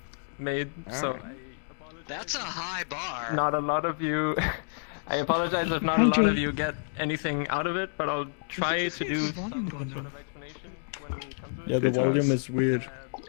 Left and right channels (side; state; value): right; silent; digital silence